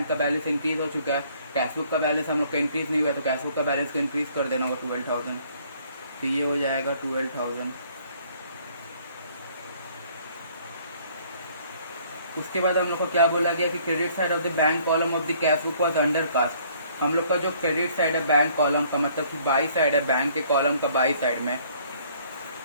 का बैलेंस इंक्रीज हो चुका है, कैश बुक का बैलेंस हम लोग का इंक्रीज नहीं हुआ, तो कैश बुक का बैलेंस को इंक्रीज कर देना होगा 12,000। तो ये हो जाएगा 12,000। उसके बाद हम लोग को क्या बोला गया कि credit side of the bank column of the cash book was under cast. हम लोग का जो क्रेडिट साइड है बैंक कॉलम का, मतलब कि बाई साइड है बैंक के कॉलम का, बाई साइड में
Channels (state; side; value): inverted; both; correlation -0.60